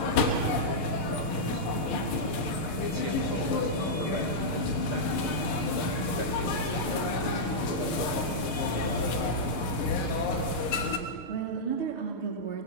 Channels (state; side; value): late; right; 6.5 ms